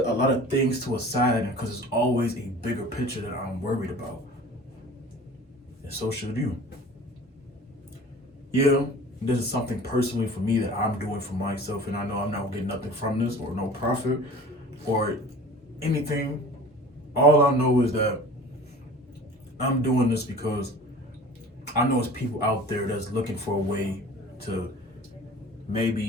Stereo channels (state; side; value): normal; both; correlation 0.42